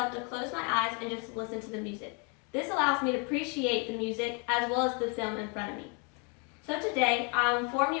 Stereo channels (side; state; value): right; quieter; 35.5 dB